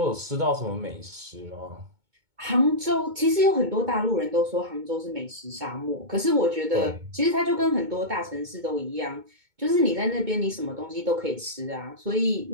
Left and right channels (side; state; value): left; late; 2.2 ms